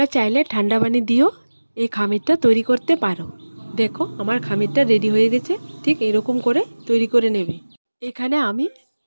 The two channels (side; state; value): both; inverted; correlation -1.00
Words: চাইলে ঠান্ডা পানি দিয়েও এই খামিরটা তৈরি করতে পারো। দেখো আমার খামিরটা রেডি হয়ে গেছে। ঠিক এরকম করে তৈরি করে নেবে। এখানে আমি